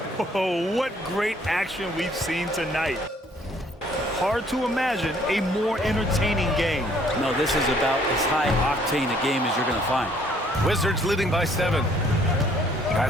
Oh, what great action we've seen tonight. Hard to imagine a more entertaining game. No, this is about as high octane a game as you're going to find. Wizards leading by 7.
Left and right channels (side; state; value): both; normal; correlation 0.62